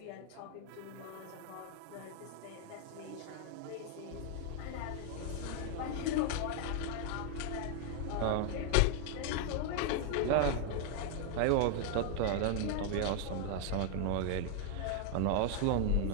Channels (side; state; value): both; different; correlation 0.00